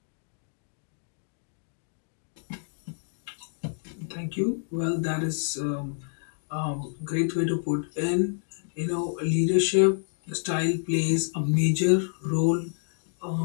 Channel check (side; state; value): right; silent; digital silence